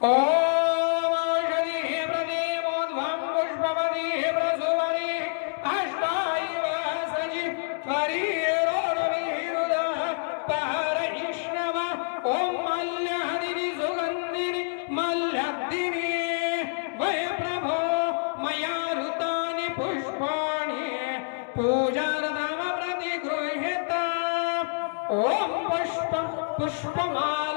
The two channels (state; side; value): silent; right; digital silence